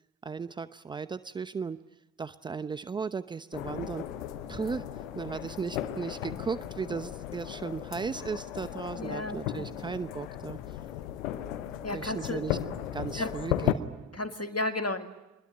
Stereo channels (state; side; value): normal; both; correlation 0.30